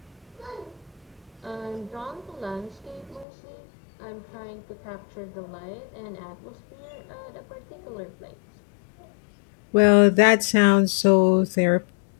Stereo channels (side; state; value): right; drops out; at 3.2 s